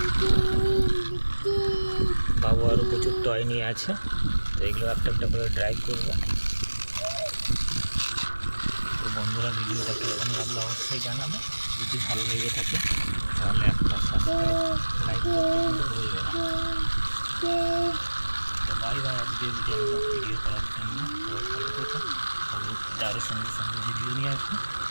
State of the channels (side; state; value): both; inverted; correlation -1.00